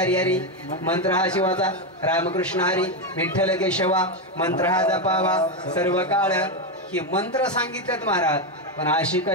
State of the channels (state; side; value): normal; both; correlation 0.08